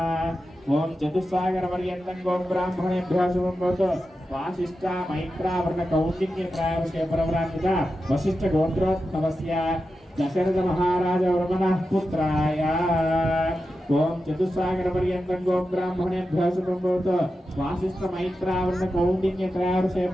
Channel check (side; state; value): both; normal; correlation 0.91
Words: ఓం చతుస్సాగర పర్యంతం గోం బ్రాహ్మణేభ్యో శుభం భవతు. వాసిష్ఠ మైత్రావరణ కౌండిన్య ప్రాయవశే ప్రవరాన్విత వశిష్ఠ గోత్రోద్భవస్య దశరథ మహారాజ వర్మణ పుత్రాయ ఓం చతుస్సాగర పర్యంతం గోం బ్రాహ్మణేభ్యో శుభం భవతు. వాసిష్ఠ మైత్రావరణ కౌండిన్య ప్రాయవశే